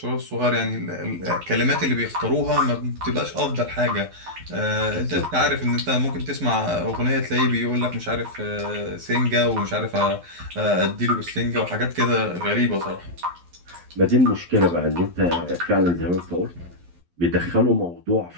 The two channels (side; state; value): left; late; 11 ms